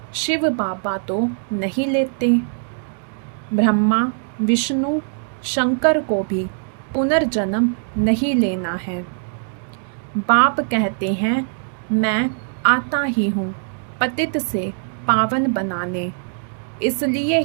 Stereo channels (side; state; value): left; silent; digital silence